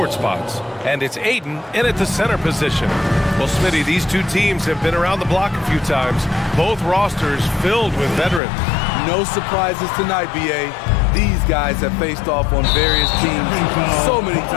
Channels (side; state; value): right; drops out; at 8.4 s